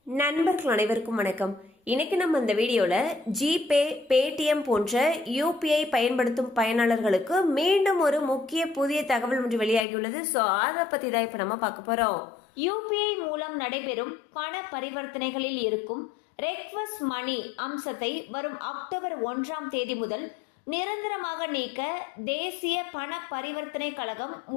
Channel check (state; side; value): drops out; right; at 9.9 s